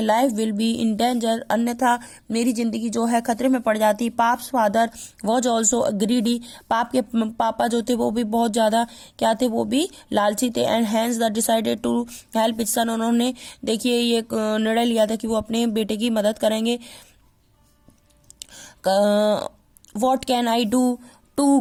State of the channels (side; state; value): both; identical; correlation 1.00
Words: life will be in danger, अन्यथा मेरी जिंदगी जो है खतरे में पड़ जाती. Pups father was also greedy, पाप के पापा जो थे वो भी बहुत ज्यादा क्या थे, वो भी लालची थे. And hence the decided to help his son, उन्होंने देखिए ये निर्णय लिया था कि वो अपने बेटे की मदद करेंगे. What can I do to